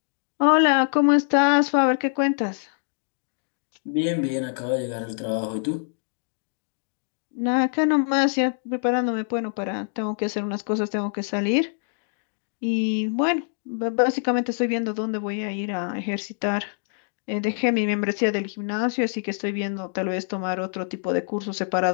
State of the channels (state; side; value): silent; right; digital silence